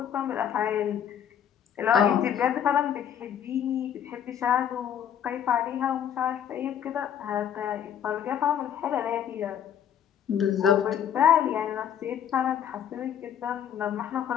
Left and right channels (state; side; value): quieter; right; 9.3 dB